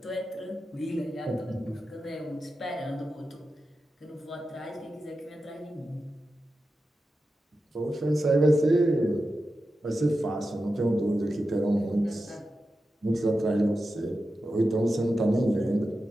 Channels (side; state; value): both; normal; correlation 0.91